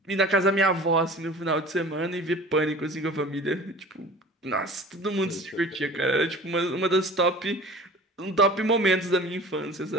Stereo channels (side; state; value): both; normal; correlation 0.41